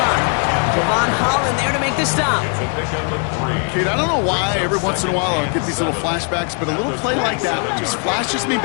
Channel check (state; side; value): quieter; right; 39.1 dB